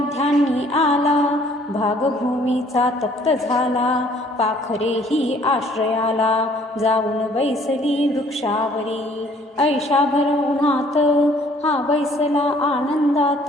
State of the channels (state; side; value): normal; both; correlation 0.59